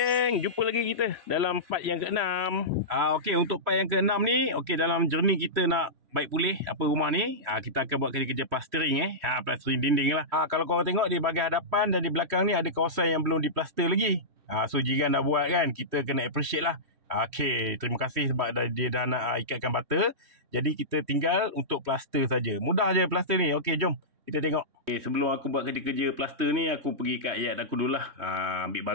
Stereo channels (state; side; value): late; left; 3.1 ms